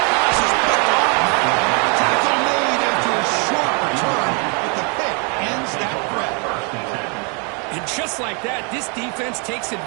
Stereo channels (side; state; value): left; quieter; 36.0 dB